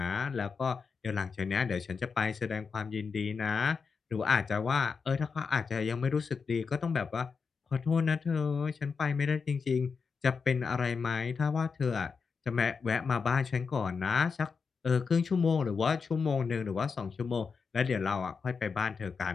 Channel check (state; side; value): quieter; right; 5.4 dB